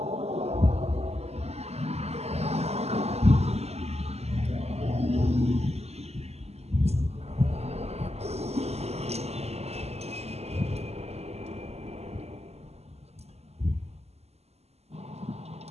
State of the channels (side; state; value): left; late; 0.30 ms